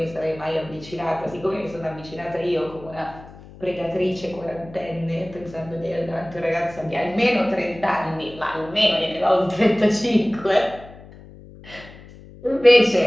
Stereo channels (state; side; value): noise; left; hum, 19 dB below the sound